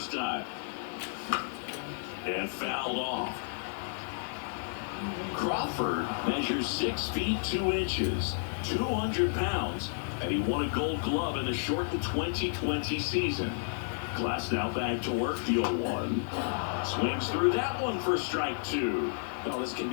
time. And fouled off. Crawford measures 6 feet 2 inches, 200 pounds, and he won a Gold Glove in the shortened 2020 season. Glasnow back to work, the 0-1. Swings through that one for strike 2. Well, this can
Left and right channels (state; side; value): silent; right; digital silence